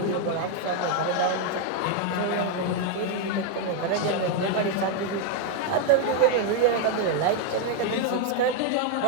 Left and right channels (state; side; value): different; both; correlation 0.00